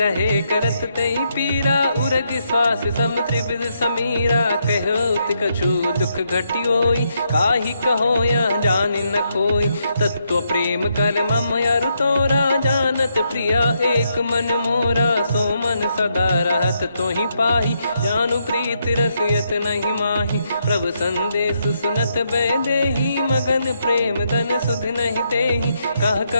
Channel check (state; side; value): inverted; both; correlation -0.78